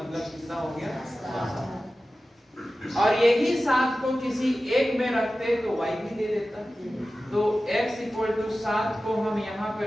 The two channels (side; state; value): both; normal; correlation 0.95